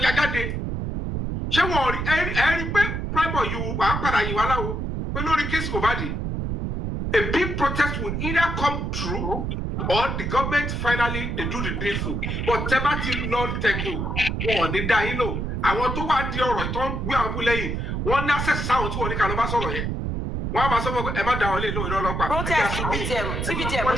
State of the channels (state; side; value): noise; right; rumble, 2 dB below the sound